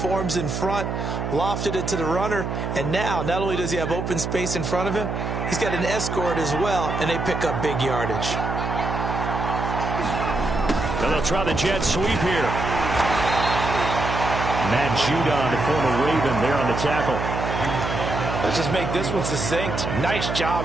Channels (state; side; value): noise; right; hum, 3 dB below the sound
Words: in front. Lofted it to the runner. And now, not only does he have open space in front of him, he's got an escort as well, and they pick up big yardage. And they'll try the jet sweep here. Matt Judon, the former Raven, there on the tackle. Let's just make this one succinct. Nice